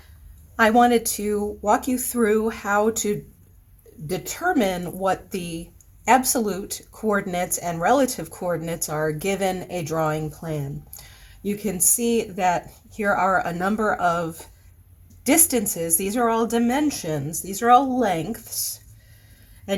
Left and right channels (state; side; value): identical; both; correlation 1.00